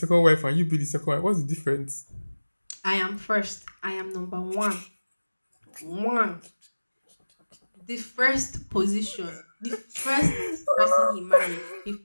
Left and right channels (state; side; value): inverted; both; correlation -1.00